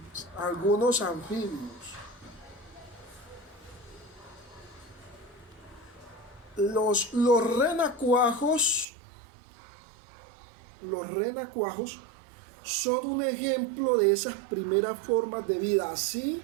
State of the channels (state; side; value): drops out; left; at 8.8 s